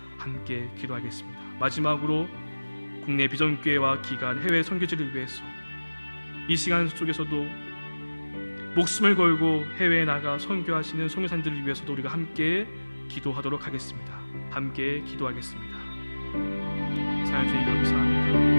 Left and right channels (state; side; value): inverted; both; correlation -1.00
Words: 함께 기도하겠습니다. 마지막으로 국내 비전교회와 기관, 해외 선교지를 위해서 이 시간 속에서도 목숨을 걸고 해외에 나가 선교하시는 선교사님들을 위해서도 우리가 함께 기도하도록 하겠습니다. 함께 기도하겠습니다. 사랑 주님